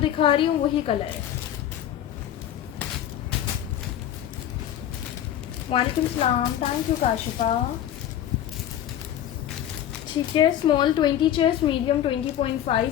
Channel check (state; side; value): quieter; right; 11.1 dB